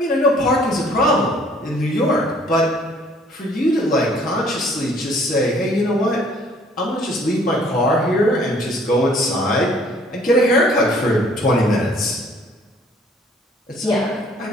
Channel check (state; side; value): normal; both; correlation 0.58